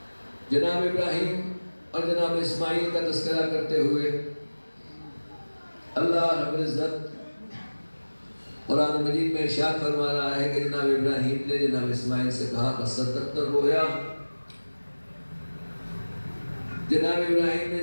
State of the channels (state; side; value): inverted; both; correlation -1.00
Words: جناب ابراہیم اور جناب اسماعیل کا تذکرہ کرتے ہوئے اللہ رب العزت قرآن مجید میں ارشاد فرما رہا ہے کہ جناب ابراہیم نے جناب اسماعیل سے کہا فَصَدَّقْتَ الرُّؤْيَا، جناب ابراہیم نے